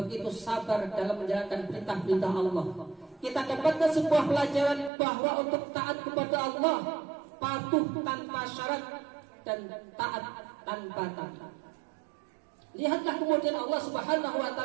sabar dalam menjalankan perintah-perintah Allah. Kita dapatkan sebuah pelajaran bahwa untuk taat kepada Allah, patuh tanpa syarat dan taat tanpa tapi. Lihatlah kemudian Allah Subhanahu wa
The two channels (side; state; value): left; drops out; at 4.9 s